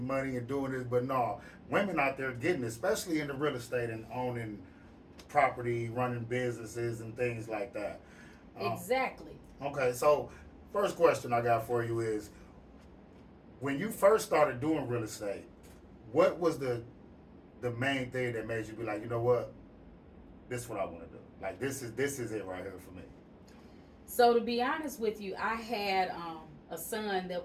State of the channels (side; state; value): both; identical; correlation 1.00